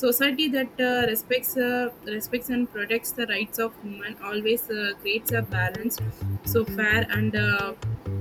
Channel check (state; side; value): identical; both; correlation 1.00